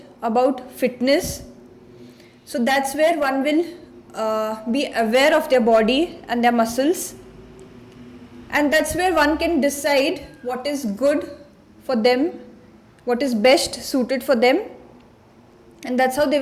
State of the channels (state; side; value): identical; both; correlation 1.00